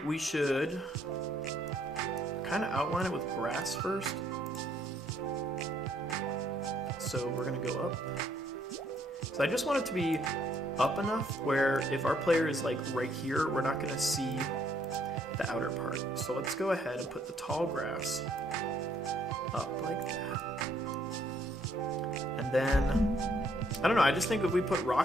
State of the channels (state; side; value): normal; both; correlation 0.68